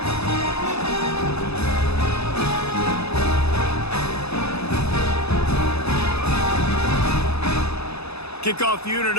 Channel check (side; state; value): right; late; 0.79 ms